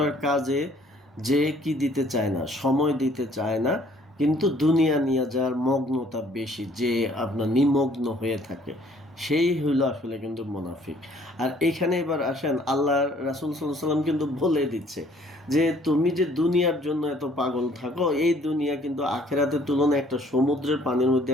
কাজে যে কি দিতে চায় না, সময় দিতে চায় না, কিন্তু দুনিয়া নিয়ে যার মগ্নতা বেশি, যে আপনার নিমগ্ন হয়ে থাকে, সেই হইলো আসলে কিন্তু মুনাফিক। আর এখানে এবার আসেন, আল্লাহ রাসূল সাল্লাল্লাহু আলাইহি ওয়াসাল্লাম কিন্তু বলে দিচ্ছে যে তুমি যে দুনিয়ার জন্য এত পাগল থাকো, এই দুনিয়া কিন্তু আখেরাতের তুলনায় একটা সমুদ্রের পানির মধ্যে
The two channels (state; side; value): normal; both; correlation 0.59